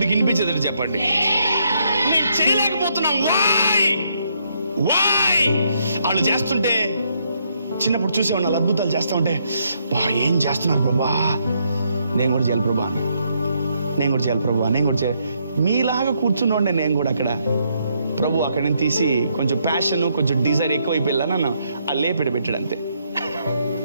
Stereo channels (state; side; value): inverted; both; correlation -0.75